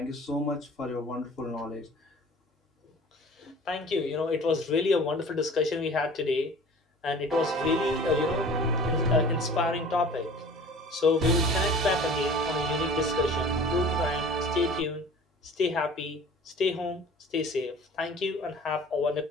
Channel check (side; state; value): both; normal; correlation 0.44